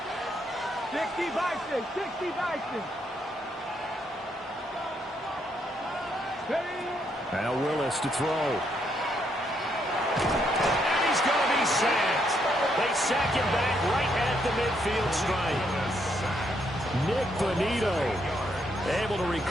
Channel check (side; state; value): both; normal; correlation 0.75